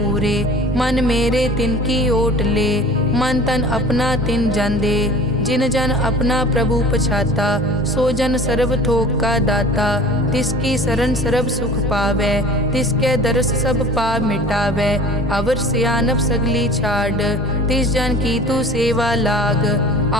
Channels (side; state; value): both; normal; correlation 0.43